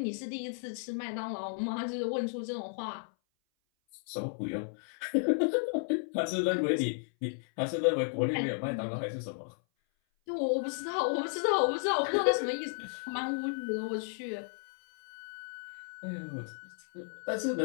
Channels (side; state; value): right; silent; 55 dB below the other